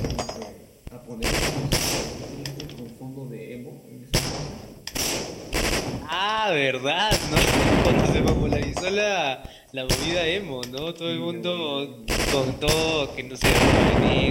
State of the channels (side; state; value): both; identical; correlation 1.00